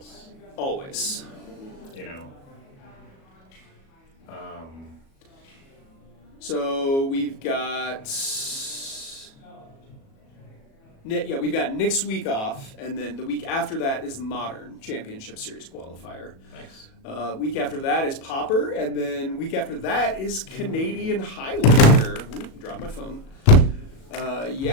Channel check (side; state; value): right; late; 37 ms